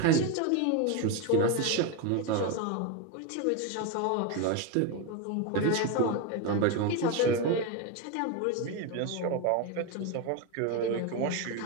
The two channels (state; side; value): different; both; correlation 0.03